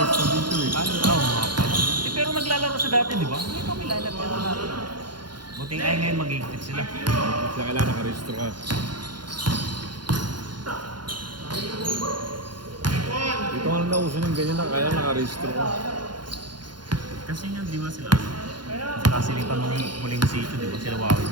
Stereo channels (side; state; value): left; late; 0.71 ms